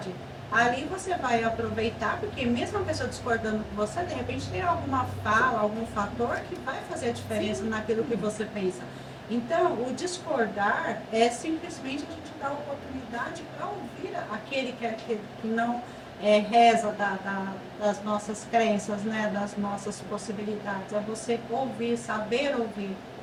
Ali você vai aproveitar, porque mesmo a pessoa discordando com você, de repente tem alguma fala, algum fator que vai fazer a diferença naquilo que você pensa. Então, o discordar é simplesmente a gente dar oportunidade para ouvir aquele que não reza das nossas crenças, né? Das nossas possibilidades. É você ouvir, saber ouvir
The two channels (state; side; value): identical; both; correlation 1.00